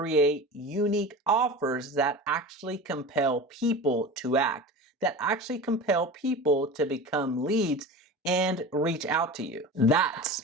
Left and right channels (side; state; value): both; normal; correlation 0.32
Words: unique offers that actually compel people to act, that actually compel people to become leads and reach out to you.